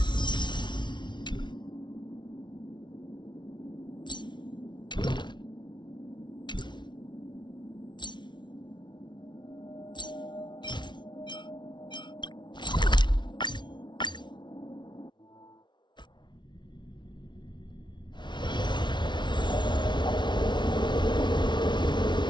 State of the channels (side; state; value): right; late; 0.22 ms